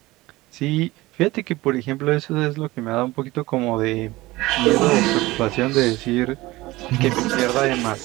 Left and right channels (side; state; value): left; quieter; 19.5 dB